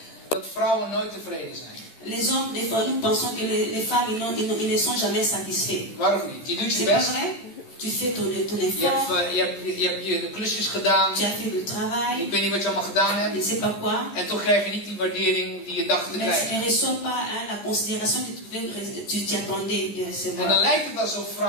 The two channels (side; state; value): right; late; 13 ms